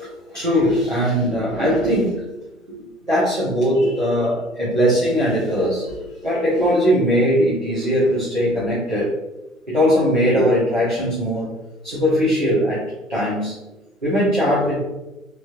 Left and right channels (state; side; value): normal; both; correlation 0.51